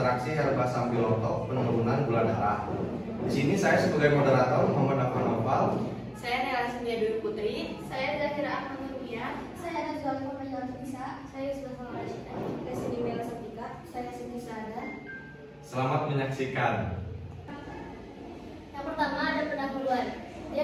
herba sambiloto penurunan gula darah. Di sini saya sebagai moderator Muhammad Afan Noval. Saya Nela Sindia Dwi Putri. Saya Zahira Ahmad Nurbiah. Saya Nazwa Muhammad Bisa. Saya Yusuf Rashida. Saya Siti Mela Satika. Saya Siti Sada. Selamat menyaksikan. Yang pertama ada pendahuluan.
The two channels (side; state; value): both; identical; correlation 1.00